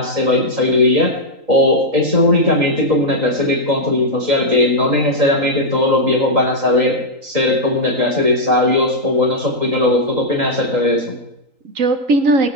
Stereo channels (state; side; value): late; left; 3.8 ms